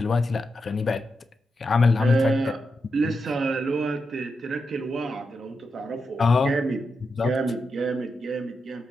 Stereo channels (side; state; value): both; normal; correlation 0.86